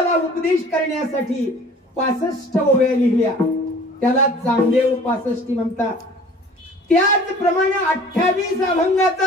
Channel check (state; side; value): normal; both; correlation 0.48